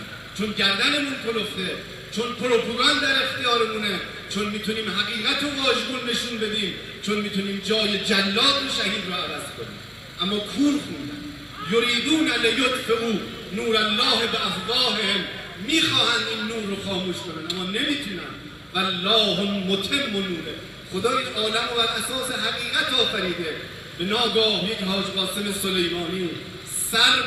چون گردنمون کلفته، چون پروپاگاند در اختیارمونه، چون میتونیم حقیقت و واژگون نشون بدیم، چون میتونیم جای جلاد و شهید رو عوض کنیم. اما کور خوندن، یریدون لیطفئوا نور الله بافواههم، میخواهند این نور رو خاموش کنن اما نمیتونن. والله متم نوره، خدا این عالم رو بر اساس حقیقت آفریده. به ناگاه یک حاج قاسم سلیمانی سر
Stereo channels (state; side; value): identical; both; correlation 1.00